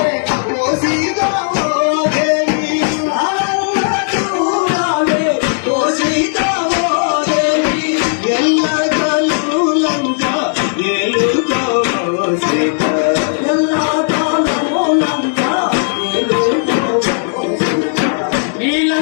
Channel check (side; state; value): right; silent; 70 dB below the other